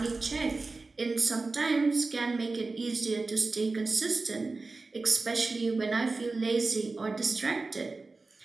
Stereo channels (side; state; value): left; quieter; 3.7 dB